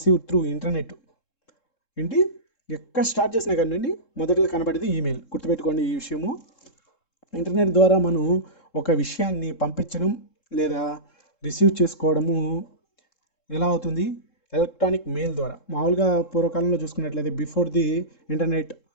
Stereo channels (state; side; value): late; right; 3.7 ms